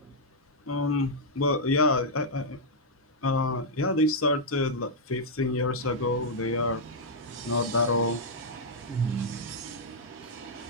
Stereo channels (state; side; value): normal; both; correlation -0.05